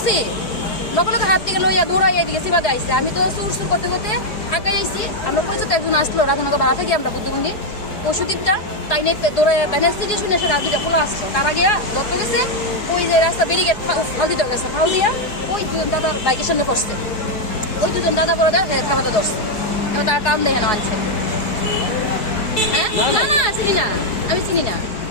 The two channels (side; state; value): right; late; 4.8 ms